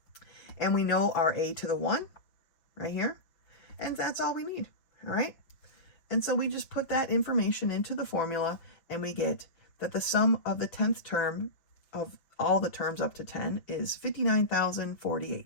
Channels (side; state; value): right; late; 5.9 ms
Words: And we know our a to the 1 right here, and that's all we need, all right? And so we just put that information into the formula, and we get that the sum of the 10th term of all the terms up to 10 is